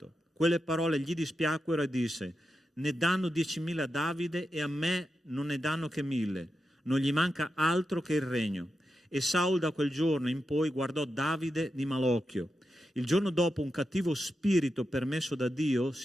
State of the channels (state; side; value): normal; both; correlation 0.88